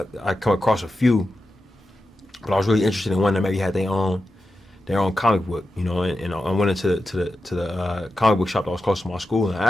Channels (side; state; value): both; normal; correlation 0.91